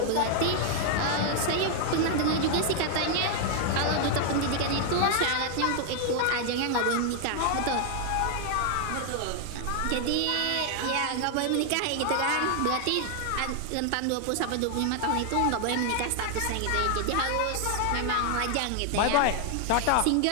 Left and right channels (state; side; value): different; both; correlation 0.00